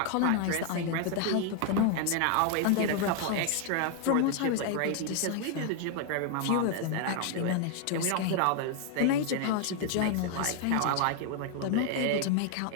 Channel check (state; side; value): different; both; correlation 0.00